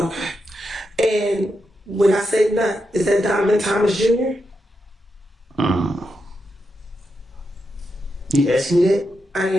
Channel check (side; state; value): both; normal; correlation 0.85